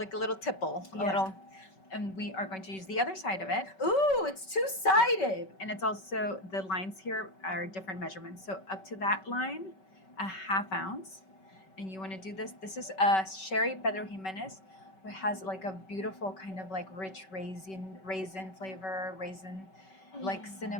little tipple, a Yeah. little. And we are going to use the other side of it. Ooh, it's two-sided. And it's also, the lines here are different measurements. So up to that line, 1/2 ounce. And you want to do this. This is Sherry Pedro Jimenez, which has like a beautiful kind of like rich raisin flavor, like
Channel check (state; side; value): late; right; 5.3 ms